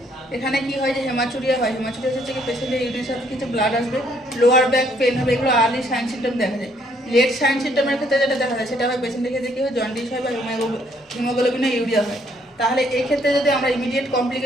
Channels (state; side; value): normal; both; correlation 0.67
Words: এখানে কি হয় যে হেমাচুরিয়া হয়, হেমাচুরিয়া হচ্ছে কি পেশেন্টের ইউরিনের সাথে কিছু ব্লাড আসবে, লোয়ার ব্যাক পেন হবে, এগুলো আর্লি সাইন সিমটম দেখা যায়। লেট সাইন সিমটমের ক্ষেত্রে যেটা দেখা যায় সেটা হয় পেশেন্টের ক্ষেত্রে কী হয়, জন্ডিস হয় বা হিমোগ্লোবিনে ইউরিয়া হয়। তাহলে এই ক্ষেত্রে যদি আমরা ইমিডিয়েট